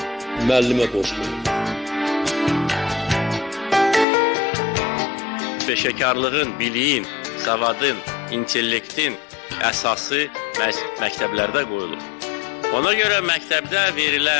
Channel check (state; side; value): drops out; right; at 4.0 s